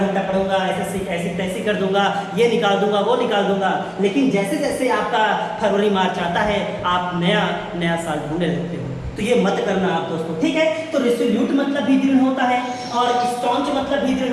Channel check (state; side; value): identical; both; correlation 1.00